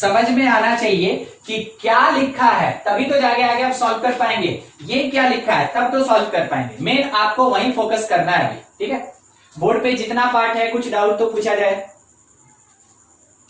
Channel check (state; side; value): identical; both; correlation 1.00